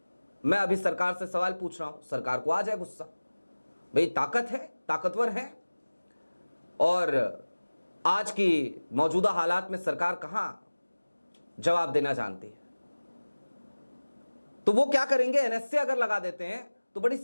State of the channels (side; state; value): both; inverted; correlation -1.00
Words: मैं अभी सरकार से सवाल पूछ रहा हूं, सरकार को आ जाए गुस्सा, भाई ताकत है, ताकतवर है, और आज की मौजूदा हालात में सरकार कहां जवाब देना जानती है, तो वो क्या करेंगे, एनएसए अगर लगा देते हैं तो बड़ी